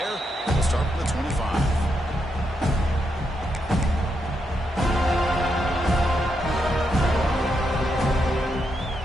start with the 25.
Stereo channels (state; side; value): normal; both; correlation 0.82